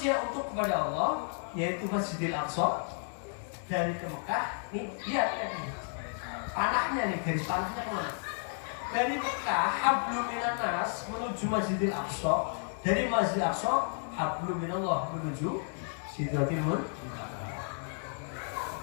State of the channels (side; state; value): right; silent; 56 dB below the other